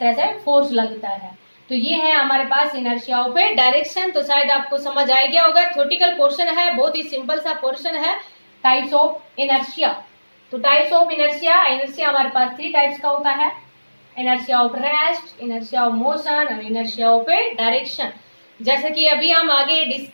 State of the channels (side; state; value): both; inverted; correlation -1.00